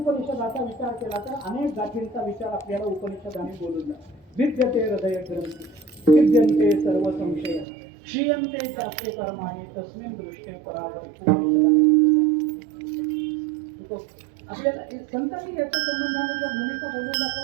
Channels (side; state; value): left; drops out; at 7.7 s